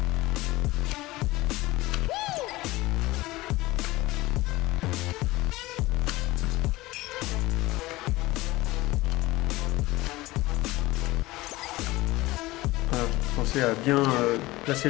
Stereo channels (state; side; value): quieter; right; 19.3 dB